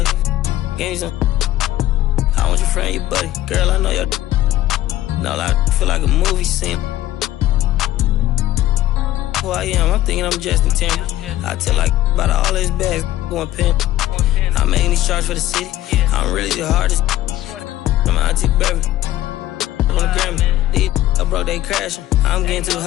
Give me some. I want your friend, your buddy. Girl, I know your. No, I feel like a movie scene. Who I am, I'm thinking I'm Justin Timberlake. I tell like about all his bags going pin. I'm making these charts for the city. I'm really the hardest. I'm an auntie baby. On the Grammy. These I broke, they crashing. I'm getting too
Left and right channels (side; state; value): right; quieter; 14.3 dB